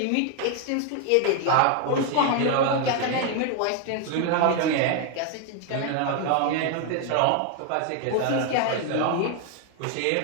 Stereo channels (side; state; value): both; different; correlation 0.01